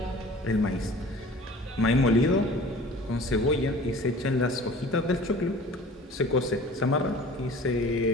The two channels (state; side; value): normal; both; correlation 0.44